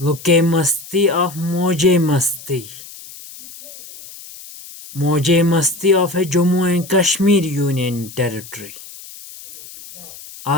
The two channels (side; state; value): left; noise; hiss, 16 dB below the sound